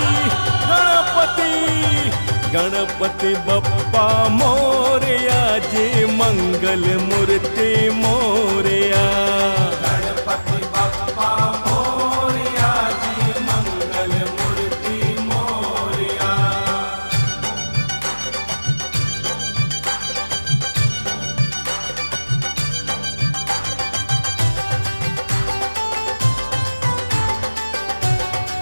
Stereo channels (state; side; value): inverted; both; correlation -1.00